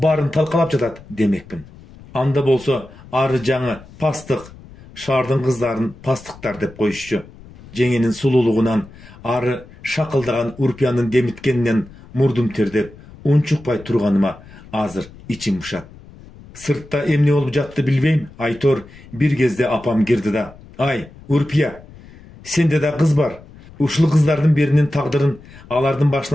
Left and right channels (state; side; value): noise; left; rumble, 21 dB below the sound